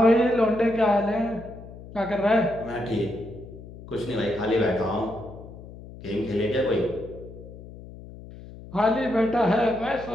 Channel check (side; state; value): left; noise; hum, 16 dB below the sound